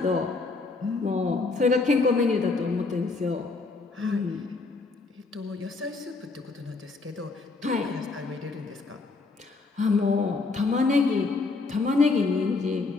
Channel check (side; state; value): right; quieter; 3.8 dB